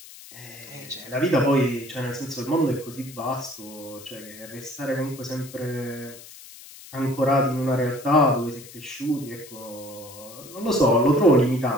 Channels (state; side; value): noise; left; hiss, 18 dB below the sound